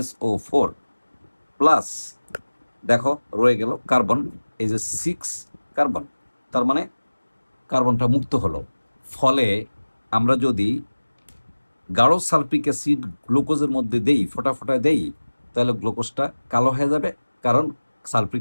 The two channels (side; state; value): both; inverted; correlation -1.00